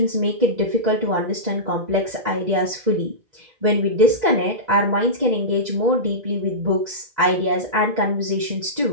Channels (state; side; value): late; left; 2.0 ms